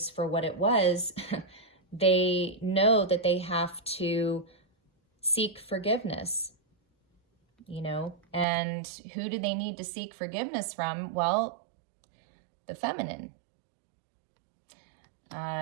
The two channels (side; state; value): left; drops out; at 8.5 s